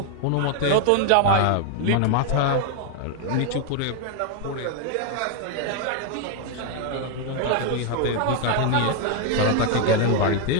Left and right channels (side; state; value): both; different; correlation 0.00